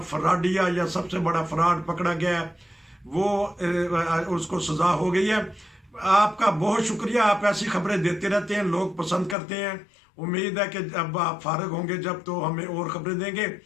फ्रॉडिया या सबसे बड़ा फ्रॉड पकड़ा गया है, वो उसको सजा हो गई है। आपका बहुत शुक्रिया, आप ऐसी खबरें देते रहते हैं, लोग पसंद करते हैं। उम्मीद है कि अब आप फारिग होंगे जब, तो हमें और खबरें देंगे।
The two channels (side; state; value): right; drops out; at 9.3 s